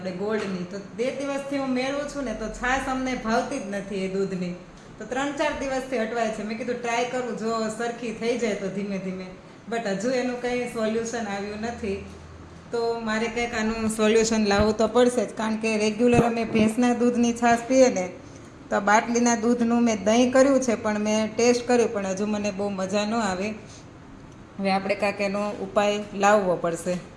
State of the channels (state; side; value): identical; both; correlation 1.00